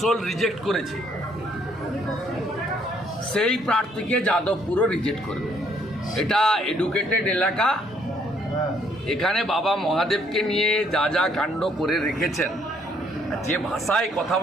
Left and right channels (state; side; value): normal; both; correlation 0.67